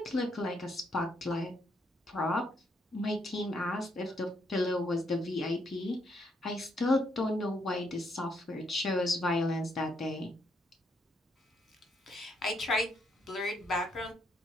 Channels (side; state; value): both; normal; correlation 0.74